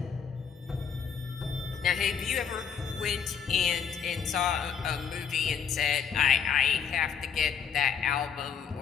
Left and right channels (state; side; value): quieter; right; 7.2 dB